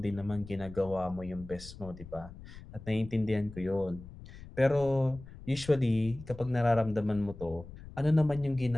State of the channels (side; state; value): left; noise; rumble, 16 dB below the sound